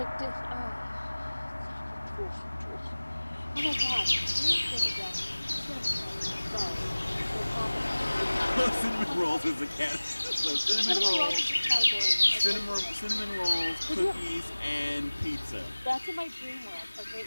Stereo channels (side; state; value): both; inverted; correlation -1.00